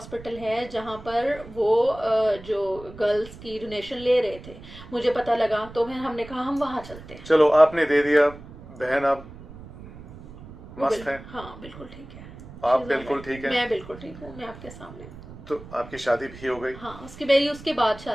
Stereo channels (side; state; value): right; noise; rumble, 17 dB below the sound